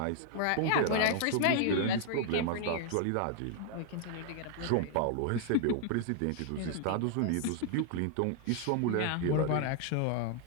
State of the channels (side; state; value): both; different; correlation 0.00